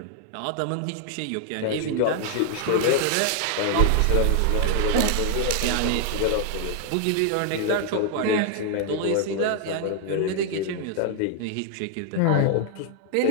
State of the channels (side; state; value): both; different; correlation 0.00